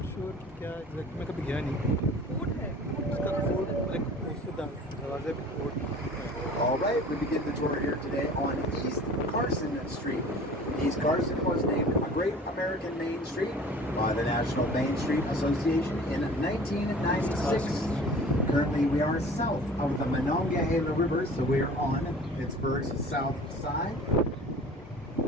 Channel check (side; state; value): both; normal; correlation 0.45